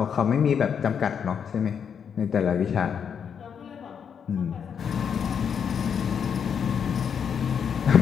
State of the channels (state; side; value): quieter; right; 7.3 dB